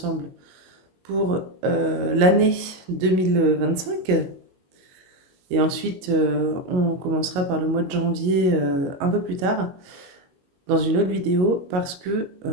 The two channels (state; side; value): late; left; 22 ms